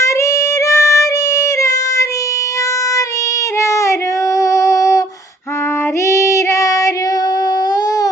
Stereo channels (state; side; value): normal; both; correlation 0.59